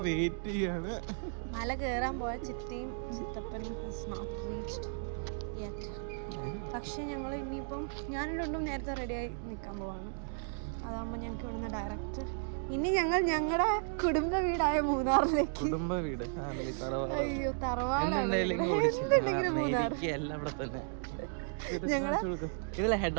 എത്തിയിട്ടുണ്ട്. മല കയറാൻ പോയ ചിത്തിയും ചിത്തപ്പനും പക്ഷെ ഞങ്ങൾ ഇനിയിപ്പം ഞാനും രണ്ടും നേരത്തെ റെഡിയായി നിൽക്കാൻ പോവാണ്. അതാകുമ്പോൾ ഞങ്ങൾക്ക് ഇവിടുന്ന് ഡയറക്റ്റ് ഇനി ഞങ്ങളുടെ കുടുംബ വീടായ മൂന്നാറിലേക്ക്. അയ്യോ, തറവാടെങ്കിലും മൂന്നാർ. ഞങ്ങളുടെ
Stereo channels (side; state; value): left; silent; digital silence